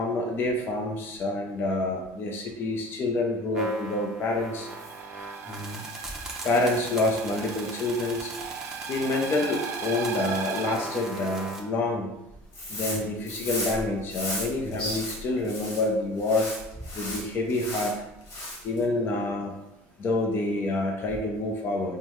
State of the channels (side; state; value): both; normal; correlation 0.43